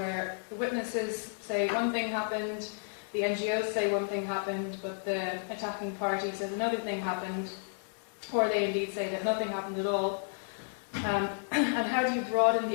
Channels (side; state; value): right; silent; 56 dB below the other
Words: the witnesses say one thing happened, the NGOs say one thing happened, but the attacking party says another thing happened, or they indeed say that nothing happened at all. And how do you broaden